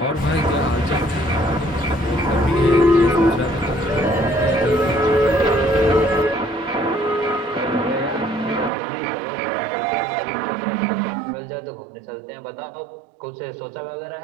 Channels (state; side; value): drops out; left; at 8.7 s